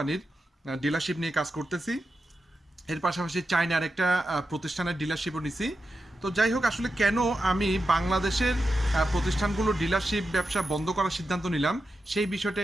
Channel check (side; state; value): both; normal; correlation 0.89